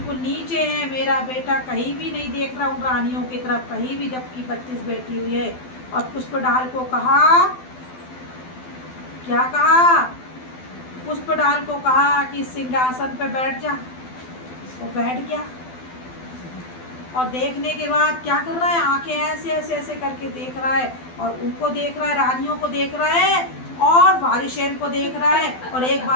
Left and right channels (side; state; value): right; late; 12 ms